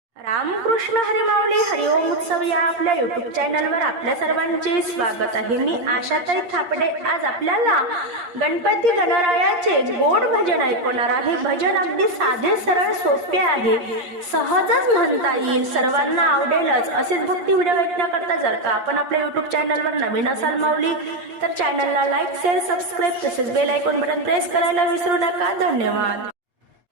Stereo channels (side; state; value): left; late; 8.6 ms